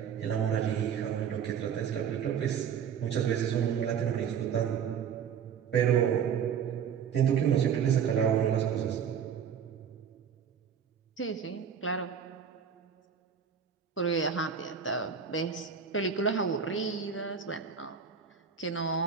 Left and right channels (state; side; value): quieter; left; 7.5 dB